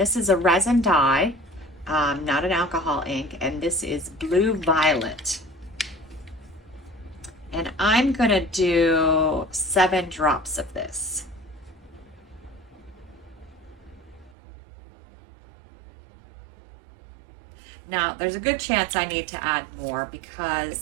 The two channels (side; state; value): left; drops out; at 14.3 s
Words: is a resin dye, not an alcohol ink, and this is Blue Violet. And I'm gonna do 7 drops of this. Now, there's a good chance I need to add more